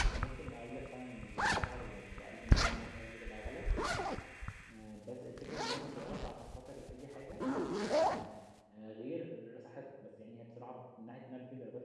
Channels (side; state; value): both; identical; correlation 1.00